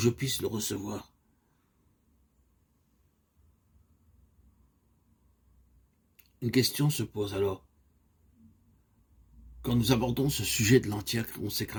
puisse le recevoir. Une question se pose alors. Quand nous abordons ce sujet de l'entière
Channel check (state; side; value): identical; both; correlation 1.00